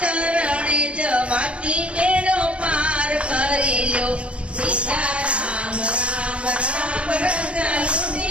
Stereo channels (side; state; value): left; late; 0.060 ms